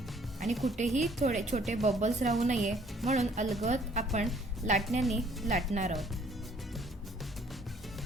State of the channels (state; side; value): normal; both; correlation 0.60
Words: आणि कुठेही थोडे छोटे बबल्स राहू नये म्हणून अलगद आपण लाटण्याने लाटणार आहोत.